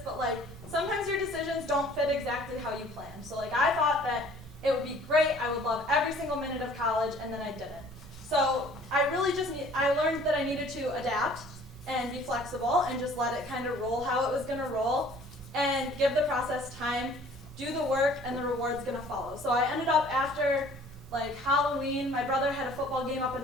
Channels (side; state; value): both; normal; correlation 0.53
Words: but like sometimes your decisions don't fit exactly how you planned. So like I thought that it would be great, I would love every single minute of college, and then I didn't. So I learned that I needed to adapt and be flexible and just let it kind of roll how it was going to roll and give the process time, do the work, and the reward's going to follow. So I ended up after like Halloween, my brother had a football game up in